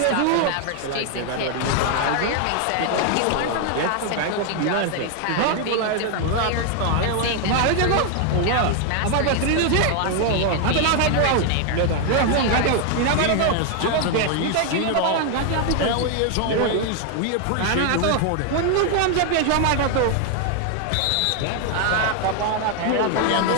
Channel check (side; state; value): both; different; correlation 0.00